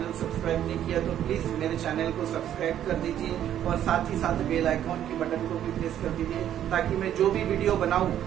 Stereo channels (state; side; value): quieter; left; 10.8 dB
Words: सब्सक्राइब नहीं किया तो प्लीज मेरे चैनल को सब्सक्राइब कर दीजिए, और साथ ही साथ बेल आइकॉन की बटन को भी प्रेस कर दीजिए, ताकि मैं जो भी वीडियो बनाऊं